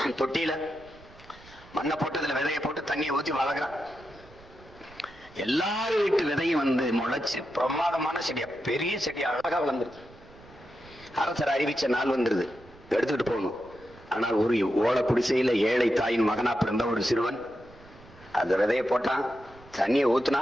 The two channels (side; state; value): right; noise; rumble, 23 dB below the sound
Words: தொட்டியில மண்ணை போட்டு அதுல விதையை போட்டு தண்ணியை ஊற்றி வளர்க்குறான். எல்லாரும் வீட்டு விதையும் முளைச்சு பிரமாதமான செடியா, பெரிய செடியா அழகா வளர்ந்துருது. அரசர் அறிவிச்ச நாள் வந்துருது, எடுத்துக்கிட்டு போகணும். ஆனால் ஒரு ஓலை குடிசையில ஏழை தாயின் மகனா பிறந்த ஒரு சிறுவன் அந்த விதையை போட்டான், தண்ணியை ஊத்துனா